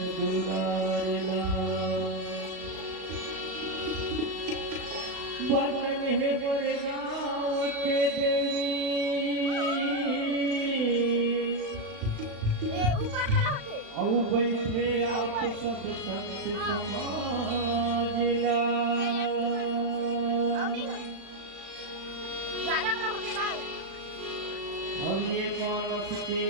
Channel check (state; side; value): late; left; 36 ms